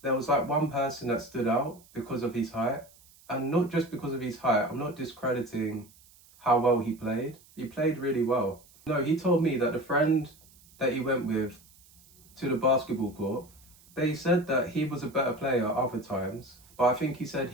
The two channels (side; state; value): right; noise; hiss, 26 dB below the sound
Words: there was like one person that stood out because of his height. And not just because of his height, I'm not discrediting how well he played. He played really well. No, he told me that the friend that he went with to the basketball court, they said that he was a better player other times, but I think he said